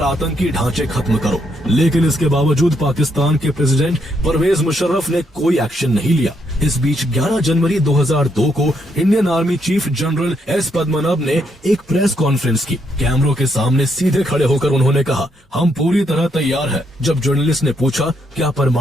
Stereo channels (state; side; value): normal; both; correlation 0.76